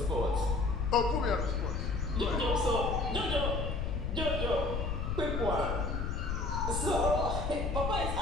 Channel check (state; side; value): noise; left; rumble, 1 dB below the sound